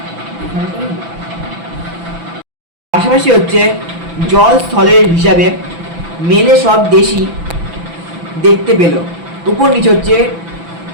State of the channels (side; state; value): left; late; 6.0 ms